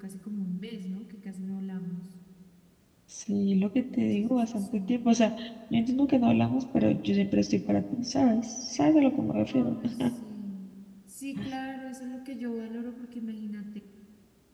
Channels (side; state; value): both; identical; correlation 1.00